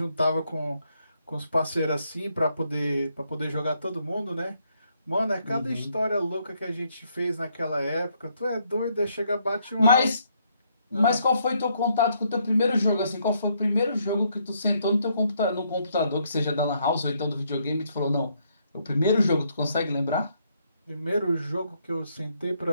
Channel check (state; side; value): inverted; both; correlation -0.73